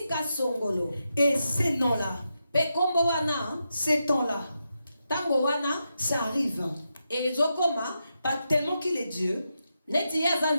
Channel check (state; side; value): inverted; both; correlation -0.86